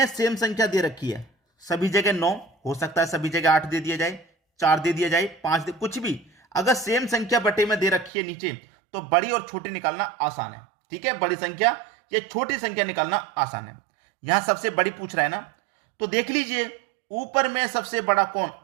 सेम संख्या दे रखी है, सभी जगह 9 हो सकता है, सभी जगह 8 दे दिया जाए, 4 दे दिया जाए, 5 दे, कुछ भी। अगर सेम संख्या बटे में दे रखी है नीचे, तो बड़ी और छोटी निकालना आसान है, ठीक है। बड़ी संख्या या छोटी संख्या निकालना आसान है। यहां सबसे बड़ी पूछ रहा है ना, तो देख लीजिए ऊपर में सबसे बड़ा कौन,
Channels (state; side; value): drops out; left; at 8.1 s